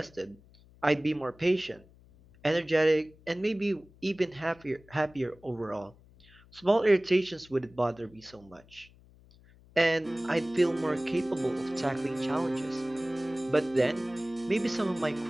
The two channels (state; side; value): noise; left; hum, 26 dB below the sound